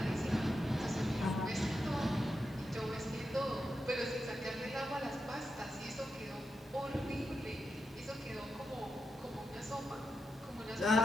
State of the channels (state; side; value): normal; both; correlation 0.87